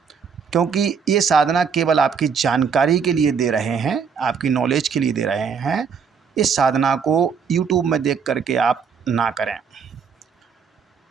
क्योंकि ये साधना केवल आपकी जानकारी के लिए दे रहे हैं, आपकी नॉलेज के लिए दे रहे हैं। इस साधना को यूट्यूब में देख करके आप ना करें,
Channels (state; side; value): quieter; left; 6.3 dB